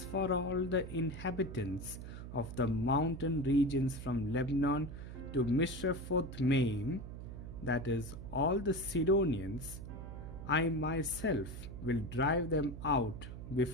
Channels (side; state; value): right; noise; hum, 10 dB below the sound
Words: for all the inhabitants of the mountain regions from Lebanon to Mishrephoth-Maim, that is, all the Sidonians, I myself will drive them out